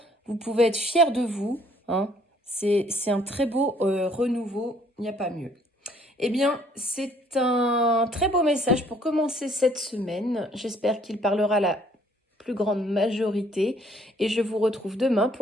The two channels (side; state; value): both; normal; correlation 0.61